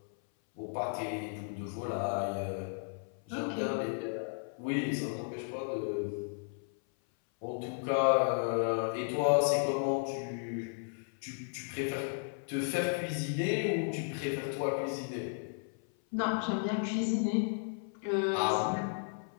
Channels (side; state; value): right; silent; 55 dB below the other